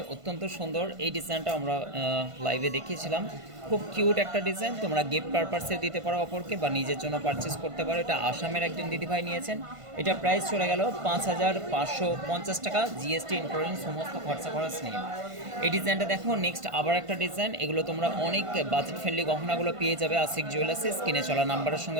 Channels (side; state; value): left; late; 1.5 ms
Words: অত্যন্ত সুন্দর এই ডিজাইনটা আমরা লাইভে দেখিয়েছিলাম। খুব কিউট একটা ডিজাইন, তোমরা গিফট পারপাসে দিতে পারো অপরকে বা নিজের জন্য পারচেস করতে পারো। এটা আসামের একজন দিদিভাই নিয়েছেন। এটা প্রাইস চলে গেল 5550 টাকা জিএসটি ইনক্লুডিং সমস্ত খরচ নিয়ে। এই ডিজাইনটা দেখো। নেক্সট আবার একটা ডিজাইন, এগুলো তোমরা অনেক বাজেট ফ্রেন্ডলি গহনাগুলো পেয়ে যাবে আশিক জুয়েলার্সে। স্ক্রিনে চলা নাম্বারের